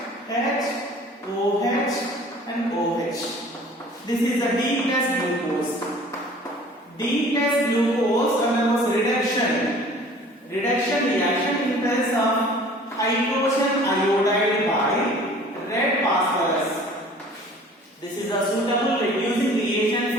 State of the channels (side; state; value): both; normal; correlation 0.49